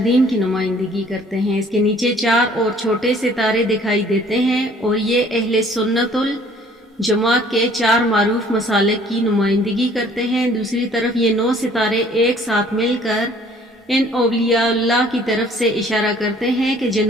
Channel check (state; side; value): normal; both; correlation 0.56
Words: کی نمائندگی کرتے ہیں۔ اس کے نیچے 4 اور چھوٹے ستارے دکھائی دیتے ہیں اور یہ اہل سنت الجماعت کے 4 معروف مسالک کی نمائندگی کرتے ہیں۔ دوسری طرف یہ 9 ستارے ایک ساتھ مل کر ان اولیاء اللہ کی طرف سے اشارہ کرتے ہیں کہ